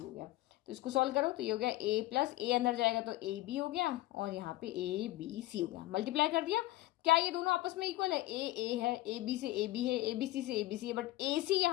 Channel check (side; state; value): right; quieter; 17.3 dB